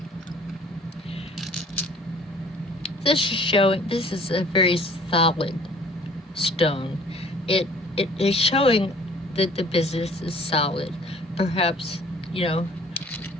This is a very solid stone. It is showing that the business is solid. Perhaps, that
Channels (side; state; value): both; normal; correlation 0.53